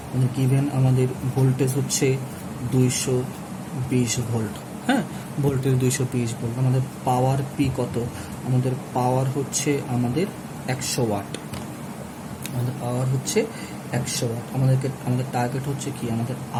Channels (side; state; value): both; identical; correlation 1.00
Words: মানে গিভেন আমাদের ভোল্টেজ হচ্ছে 220 ভোল্ট, হ্যাঁ, ভোল্টেজ 220 ভোল্ট। আমাদের পাওয়ার পি কত? আমাদের পাওয়ার হচ্ছে আমাদের 100 ওয়াট, আমাদের পাওয়ার হচ্ছে 100 ওয়াট। আমাদের টার্গেট হচ্ছে কি? আমাদের